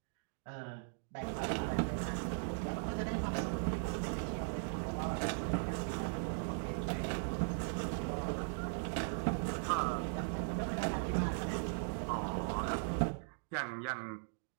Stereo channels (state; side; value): silent; left; digital silence